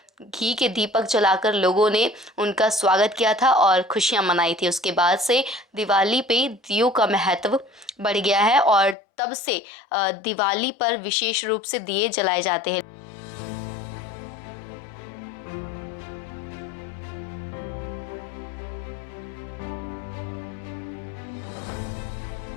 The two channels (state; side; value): drops out; right; at 9.0 s